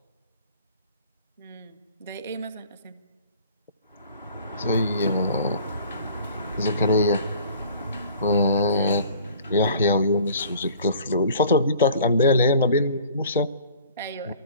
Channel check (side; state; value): both; inverted; correlation -0.49